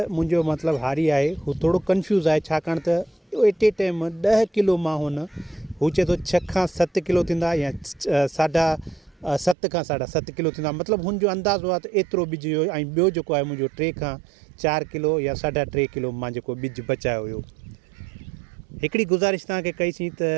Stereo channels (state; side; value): drops out; left; at 9.6 s